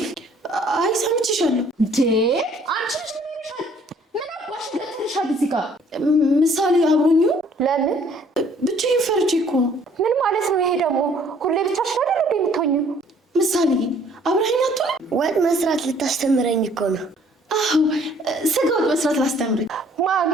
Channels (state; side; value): normal; both; correlation 0.59